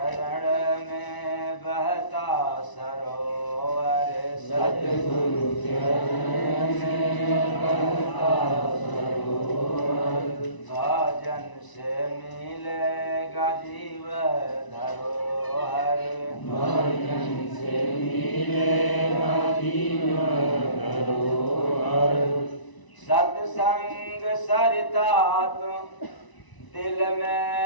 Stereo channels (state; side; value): late; right; 1.0 ms